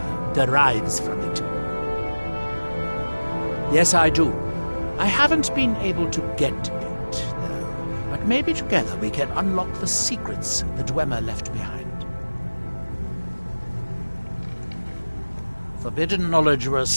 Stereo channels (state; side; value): inverted; both; correlation -1.00